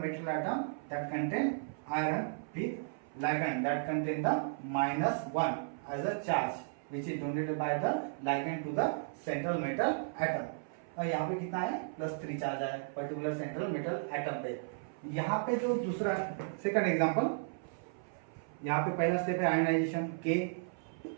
metal atom that contain iron with ligand that contain the -1 as a charge which is donated by the ligand to the central metal atom। और यहाँ पे कितना है, +3 charge है particular central metal atom पे। यहाँ पे जो दूसरा सेकंड एग्जांपल, यहाँ पे पहला स्टेप है आयोनाइजेशन, K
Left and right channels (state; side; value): silent; left; 55 dB below the other